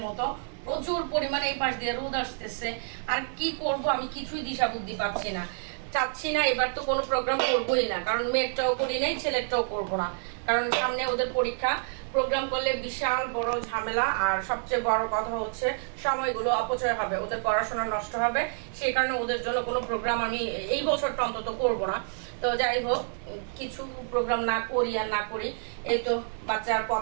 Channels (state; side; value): silent; left; digital silence